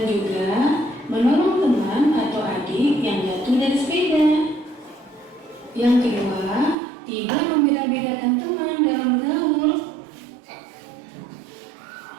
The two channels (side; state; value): left; drops out; at 6.8 s